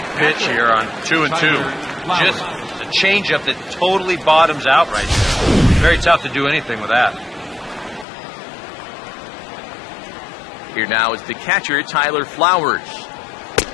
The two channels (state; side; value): drops out; right; at 8.1 s